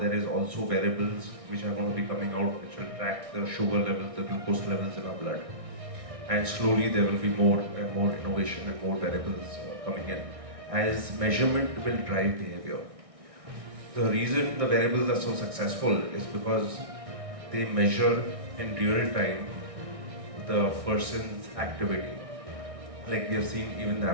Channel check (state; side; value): late; left; 1.6 ms